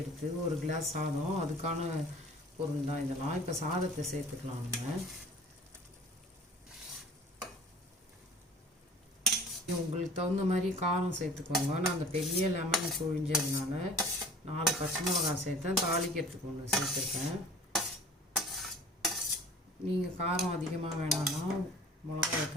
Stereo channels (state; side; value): normal; both; correlation 0.46